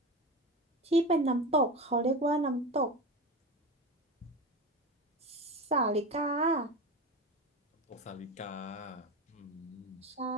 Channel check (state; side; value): normal; both; correlation 0.25